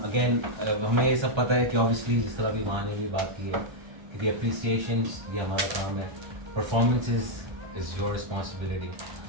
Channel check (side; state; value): left; late; 1.3 ms